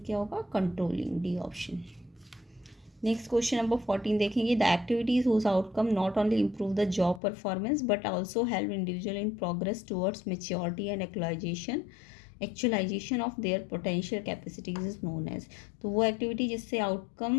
क्या होगा? Controlling, D option. Next question number 14 देखेंगे। The activities whose outcome not only improve the job performance but also help individual in progress towards maturity and actualization of their potential capacities is known as. तो वो activity जिससे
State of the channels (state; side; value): drops out; right; at 7.2 s